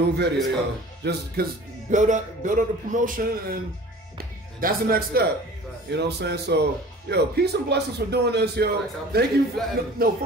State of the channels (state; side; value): normal; both; correlation 0.44